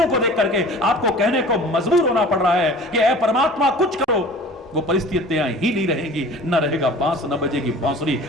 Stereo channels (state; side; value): normal; both; correlation 0.43